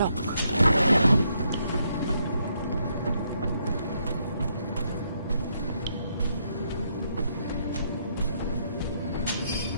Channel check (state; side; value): inverted; both; correlation -0.75